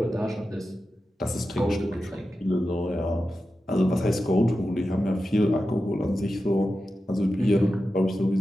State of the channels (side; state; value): both; normal; correlation 0.91